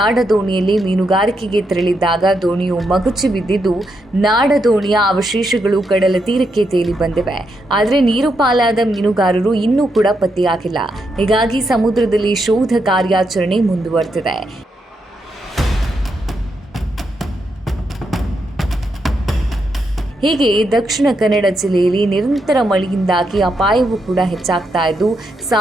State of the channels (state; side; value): normal; both; correlation 0.81